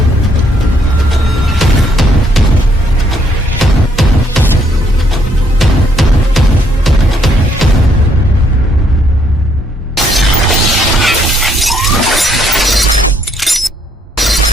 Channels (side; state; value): both; normal; correlation 0.70